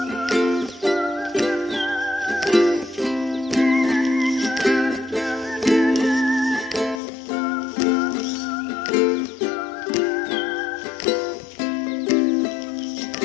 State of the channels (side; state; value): right; drops out; at 7.0 s